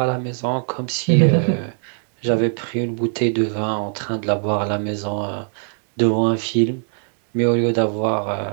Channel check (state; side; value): silent; left; 62 dB below the other